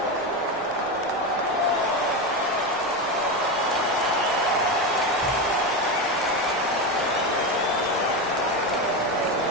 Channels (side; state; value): right; noise; rumble, 25 dB below the sound